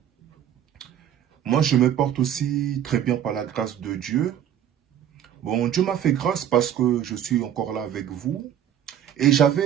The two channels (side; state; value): left; quieter; 10.0 dB